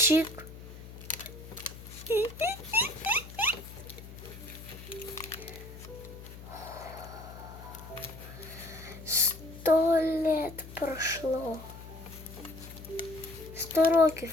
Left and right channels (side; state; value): left; noise; hum, 14 dB below the sound